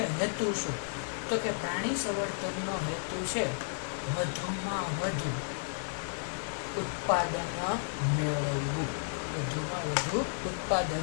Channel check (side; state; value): right; silent; digital silence